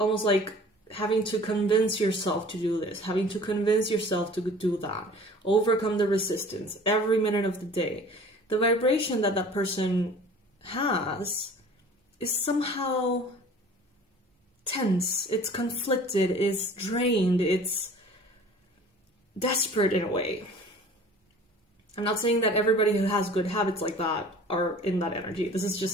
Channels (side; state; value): both; normal; correlation 0.46